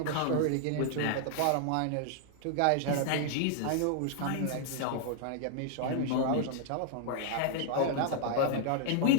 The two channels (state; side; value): different; both; correlation 0.00